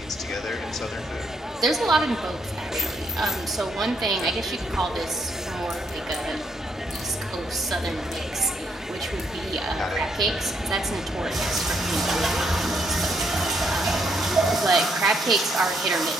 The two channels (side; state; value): both; normal; correlation 0.74